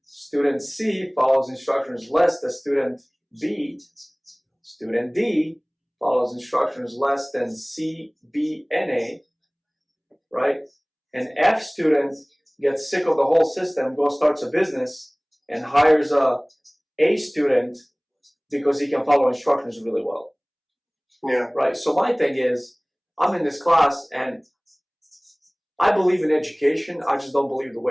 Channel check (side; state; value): both; identical; correlation 1.00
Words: Student C follows instructions less than student B. Student D follows instructions less than C, B, and A, right? An F student gets sick of the whole system, goes starts a business, and hires a student because he can follow instructions really well. Yeah. Right. So my thing is, I'm in this class and I believe in education. I just don't believe the